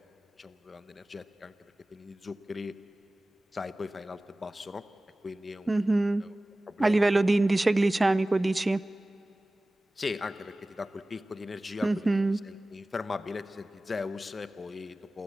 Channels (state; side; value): normal; both; correlation 0.97